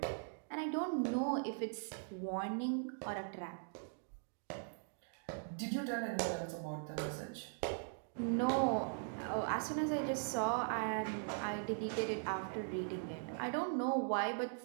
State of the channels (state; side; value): silent; left; digital silence